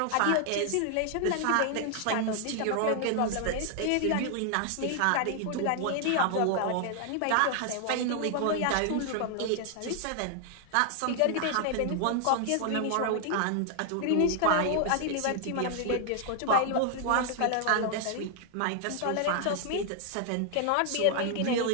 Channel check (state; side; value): different; both; correlation 0.00